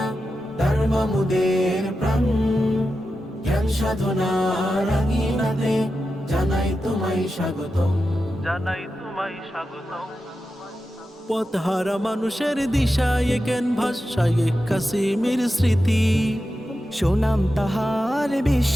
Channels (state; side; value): normal; both; correlation 0.91